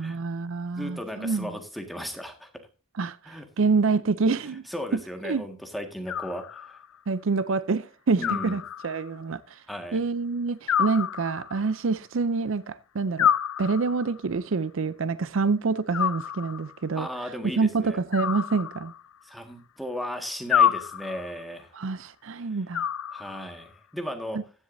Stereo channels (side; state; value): both; normal; correlation 0.37